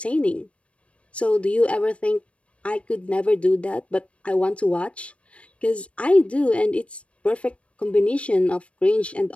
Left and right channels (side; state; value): right; late; 0.062 ms